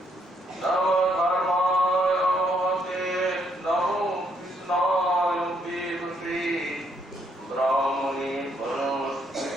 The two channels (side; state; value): both; normal; correlation 0.72